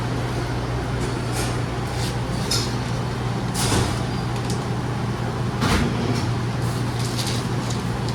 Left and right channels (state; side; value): identical; both; correlation 1.00